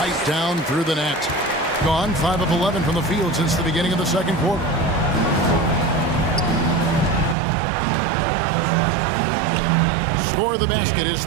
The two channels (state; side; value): drops out; left; at 7.4 s